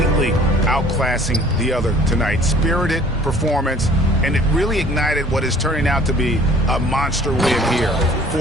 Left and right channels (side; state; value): both; normal; correlation 0.53